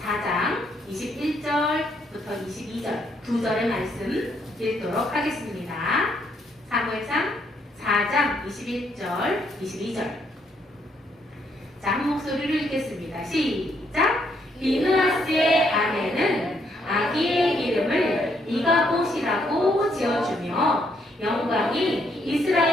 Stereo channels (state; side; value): normal; both; correlation 0.73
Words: 4장 21절부터 22절 두 절의 말씀 읽도록 하겠습니다. 사무엘상 4장 21절, 22절. 자, 한 목소리로 읽겠습니다. 시작! 비느하스의 아내는 아기의 이름을 이가봇이라고 지어주며 영광이